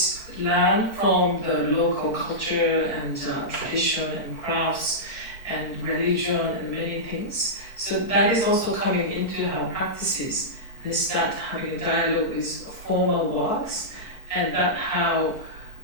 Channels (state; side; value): late; right; 4.4 ms